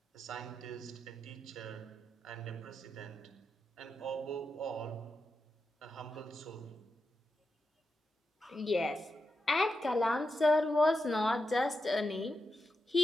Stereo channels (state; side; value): normal; both; correlation 0.87